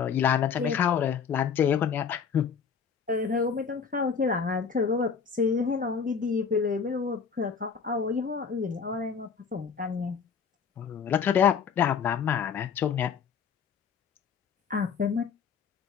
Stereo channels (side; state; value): right; quieter; 6.4 dB